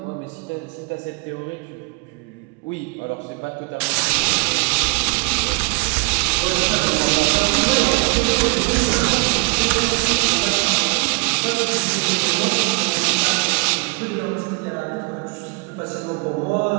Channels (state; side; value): quieter; left; 30.9 dB